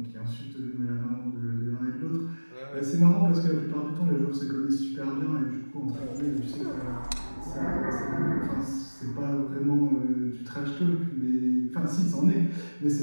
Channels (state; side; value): inverted; both; correlation -1.00